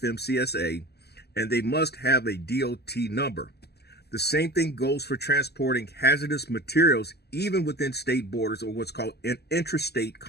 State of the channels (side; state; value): right; late; 0.47 ms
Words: and they must have a DOT number. The same thing goes for transporting hazardous materials even within state borders, or what's called an intrastate